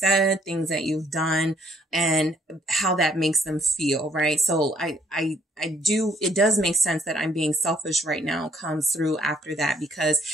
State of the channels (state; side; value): normal; both; correlation 0.66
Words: things that you've done, and how that makes them feel, right? So it does make sense that I'm being selfish right now comes through after that,